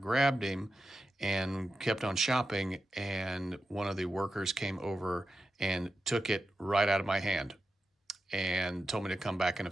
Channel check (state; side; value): normal; both; correlation 0.90